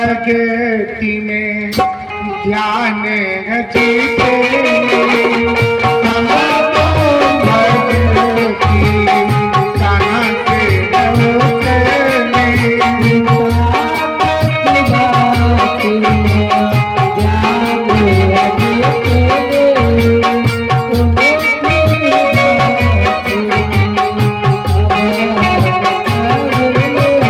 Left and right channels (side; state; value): both; identical; correlation 1.00